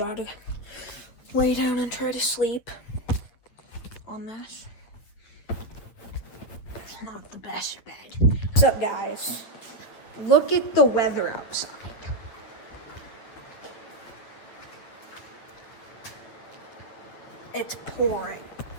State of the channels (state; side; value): late; right; 8.9 ms